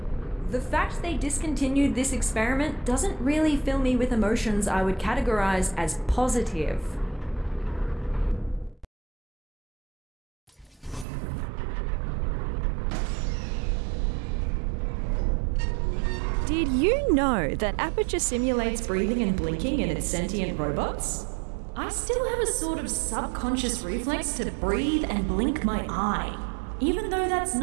The fact they discontinued this experiment doesn't really fill me with emotions I would categorize as positive. Did you know that Aperture simulates breathing and blinking in its sentient robots? I still have a sort of subconscious reflex to breathe and blink my eye, even though that's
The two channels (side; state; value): left; drops out; at 11.1 s